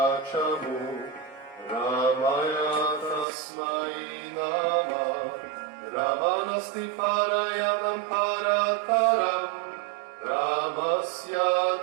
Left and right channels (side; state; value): left; drops out; at 3.2 s